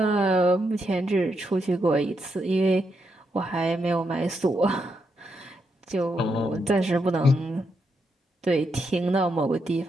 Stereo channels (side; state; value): both; normal; correlation 0.81